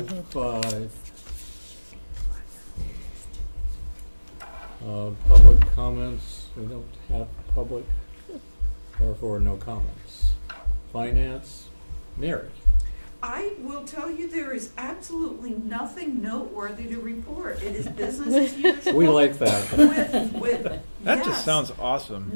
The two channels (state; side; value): inverted; both; correlation -1.00